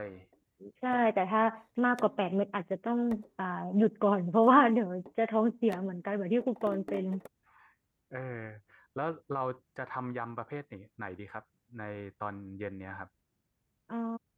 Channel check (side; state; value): both; identical; correlation 1.00